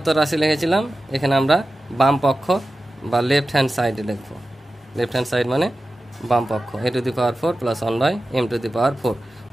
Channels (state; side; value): normal; both; correlation 0.94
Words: রাশি লিখেছিলাম, এখানে আমরা বাম পক্ষ বা লেফট হ্যান্ড সাইডে লিখব। লেফট হ্যান্ড সাইড মানে বাম পক্ষ, a⁴ প্লাস 1/m⁴।